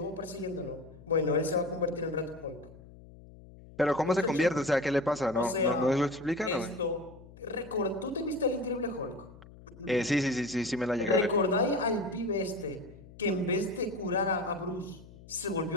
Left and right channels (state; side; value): noise; left; hum, 20 dB below the sound